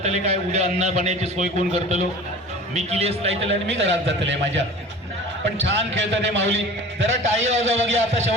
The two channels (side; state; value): both; normal; correlation 0.40